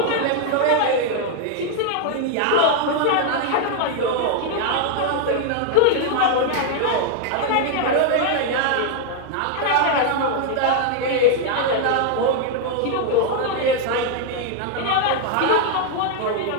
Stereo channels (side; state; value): both; different; correlation 0.00